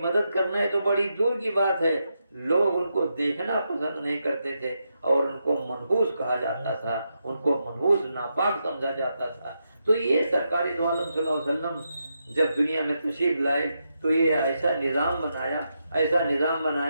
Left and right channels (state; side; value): inverted; both; correlation -0.84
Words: کرنا ہے تو بڑی دور کی بات ہے، لوگ ان کو دیکھنا پسند نہیں کرتے تھے اور ان کو منحوس کہا جاتا تھا، ان کو منحوس ناپاک سمجھا جاتا تھا۔ تو یہ سرکار دو عالم صلی اللہ علیہ وسلم جب دنیا میں تشریف لائے تو یہ ایسا نظام